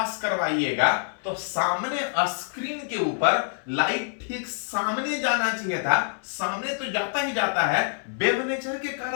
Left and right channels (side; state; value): right; silent; 60 dB below the other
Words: करवाइएगा तो सामने स्क्रीन के ऊपर लाइट ठीक सामने जाना चाहिए था, सामने तो जाता ही जाता है, वेव नेचर के